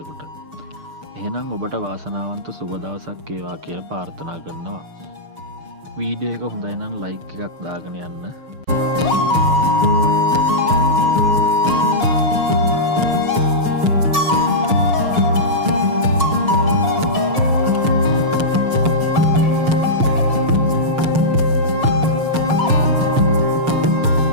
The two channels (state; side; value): late; left; 6.6 ms